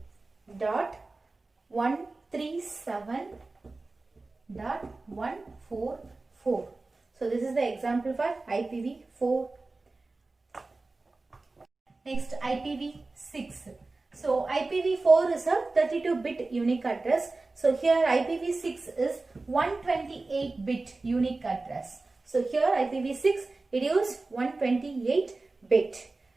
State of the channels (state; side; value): quieter; left; 3.4 dB